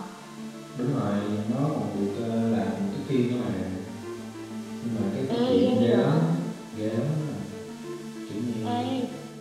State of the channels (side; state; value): both; identical; correlation 1.00